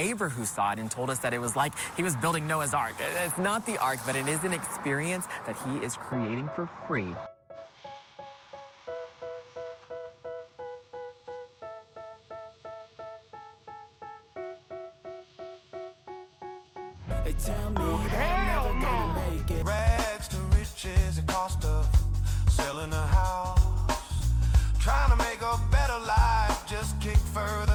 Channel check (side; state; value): both; identical; correlation 1.00